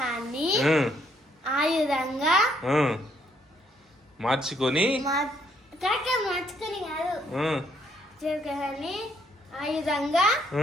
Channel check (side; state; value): both; normal; correlation 0.70